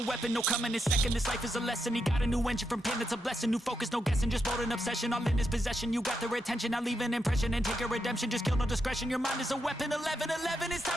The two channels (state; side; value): normal; both; correlation 0.84